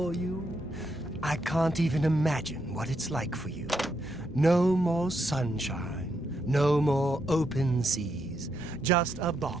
you? I can't even imagine what it's like for you. No more sunshine, no more open seas, just a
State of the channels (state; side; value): normal; both; correlation 0.80